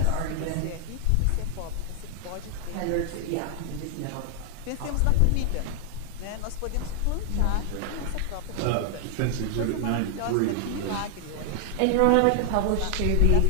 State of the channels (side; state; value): both; different; correlation 0.00